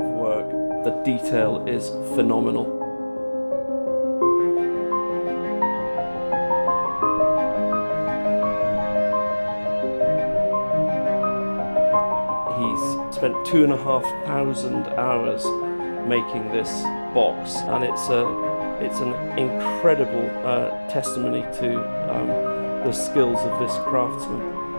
of work. The detail is phenomenal. He's spent 2,500 hours making this box, and it's an incredible testimony to the skills of this craftsman.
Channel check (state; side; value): inverted; both; correlation -1.00